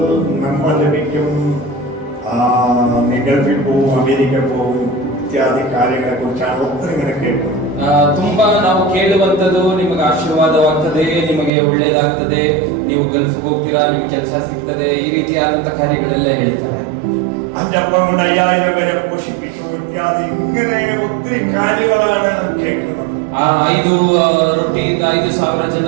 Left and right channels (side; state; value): left; drops out; at 11.5 s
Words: നന്മ ലഭിക്കും, നീ ഗൾഫിൽ പോവും, അമേരിക്ക പോവും ഇത്യാദി കാര്യങ്ങളെ കുറിച്ചാണ് ഒത്തിരി ഇങ്ങനെ കേൾക്കുന്നത്. ತುಂಬಾ ನಾವು ಕೇಳುವಂತದ್ದು ನಿಮಗೆ ಆಶೀರ್ವಾದವಾಗ್ತದೆ, ನಿಮಗೆ ಒಳ್ಳೇದಾಗ್ತದೆ, ನೀವು ಗಲ್ಫ್ಗೆ ಹೋಗ್ತೀರಾ, ನಿಮಗೆ ಕೆಲಸ ಸಿಗ್ತದೆ, ಈ ರೀತಿಯಾದಂತ ಕಾರ್ಯಗಳೆಲ್ಲ ಹೇಳ್ತಾರೆ. 5,000 കൊണ്ട് 5,000 പേരെ പോഷിപ്പിച്ചു ഇത്യാദി ഇങ്ങനെ ഒത്തിരി കാര്യങ്ങളാണ് കേൾക്കുന്നത്. 5 ರೊಟ್ಟಿಯಿಂದ 5,000